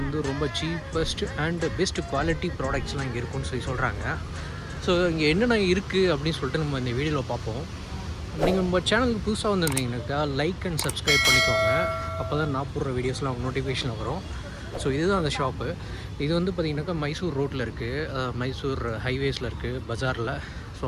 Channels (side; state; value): both; identical; correlation 1.00